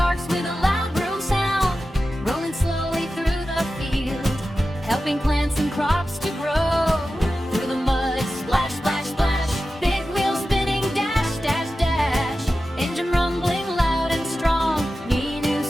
with a loud vroom sound. Rolling slowly through the field, helping plants and crops to grow. Through the mud, splash, splash, splash. Big wheels spinning, dash, dash, dash. Engine rumbling loud and strong. Ninu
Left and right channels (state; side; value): normal; both; correlation 0.93